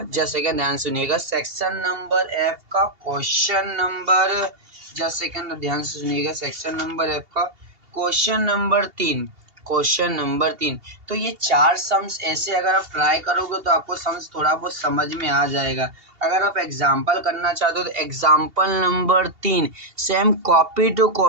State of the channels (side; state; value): left; late; 2.8 ms